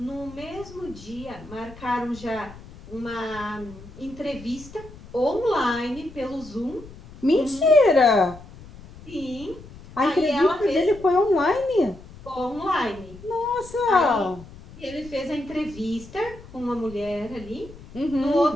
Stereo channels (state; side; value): noise; left; rumble, 18 dB below the sound